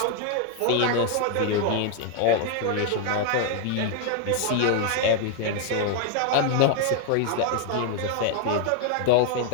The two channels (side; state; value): both; different; correlation 0.00